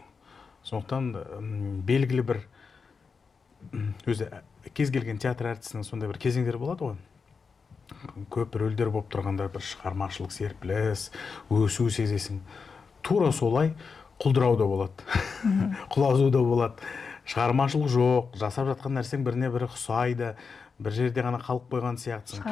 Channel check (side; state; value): right; quieter; 5.2 dB